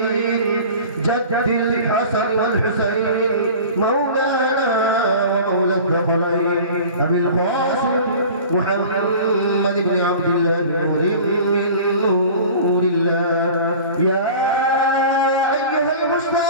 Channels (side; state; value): both; inverted; correlation -0.40